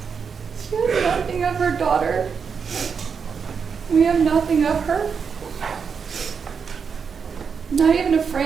She has nothing of her daughter. We have nothing of her. Not even a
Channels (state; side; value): quieter; left; 6.1 dB